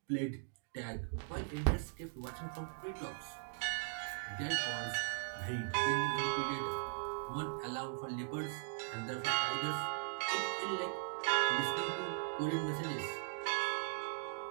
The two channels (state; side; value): silent; left; digital silence